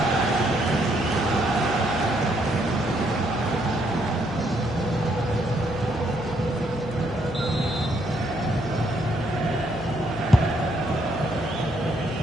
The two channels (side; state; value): left; noise; hum, 16 dB below the sound